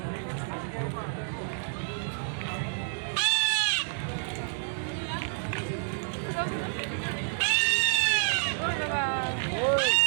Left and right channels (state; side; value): silent; left; digital silence